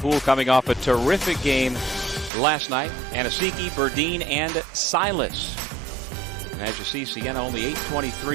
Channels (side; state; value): left; drops out; at 2.3 s